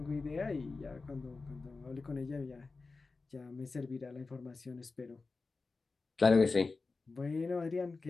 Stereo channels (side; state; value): right; quieter; 4.0 dB